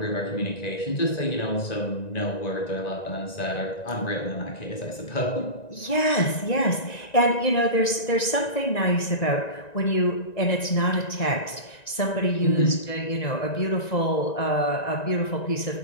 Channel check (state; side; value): late; right; 1.9 ms